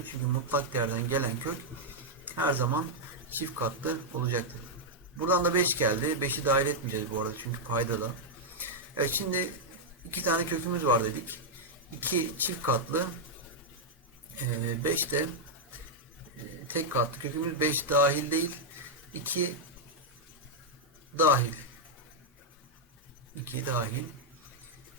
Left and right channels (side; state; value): both; normal; correlation -0.03